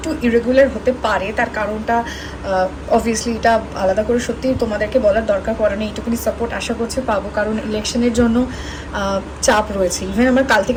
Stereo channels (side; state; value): both; identical; correlation 1.00